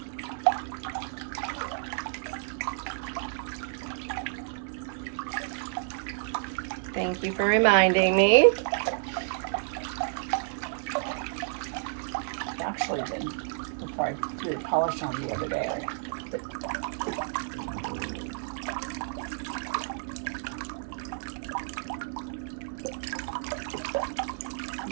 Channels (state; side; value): silent; left; digital silence